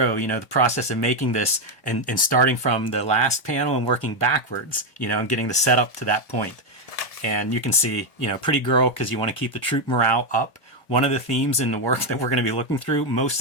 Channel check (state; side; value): late; right; 1.7 ms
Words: the process of making this and starting from the last panel and working backwards, and getting the setup to that point. And you can see, pretty girl, because you want to keep the troop morale up. One of the themes in the work that we're going to be looking through, most